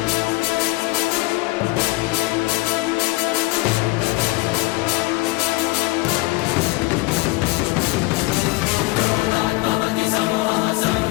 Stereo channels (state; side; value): quieter; right; 22.5 dB